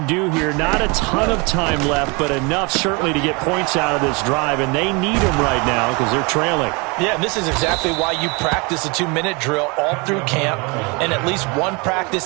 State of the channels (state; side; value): quieter; left; 29.2 dB